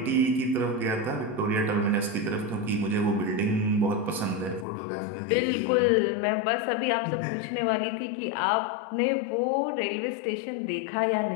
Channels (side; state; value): right; drops out; at 4.7 s